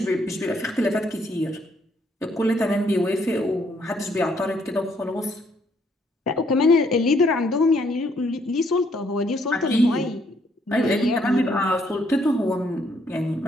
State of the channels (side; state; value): both; normal; correlation 0.69